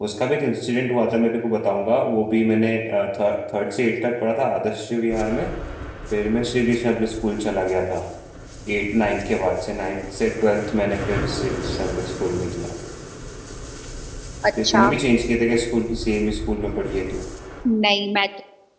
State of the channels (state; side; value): identical; both; correlation 1.00